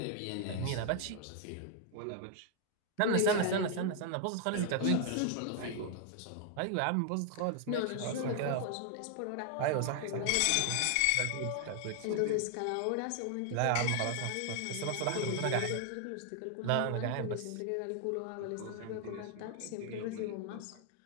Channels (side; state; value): both; different; correlation 0.00